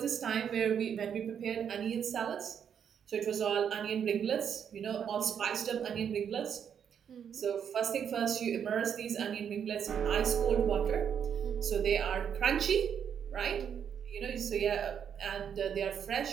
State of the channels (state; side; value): quieter; left; 8.1 dB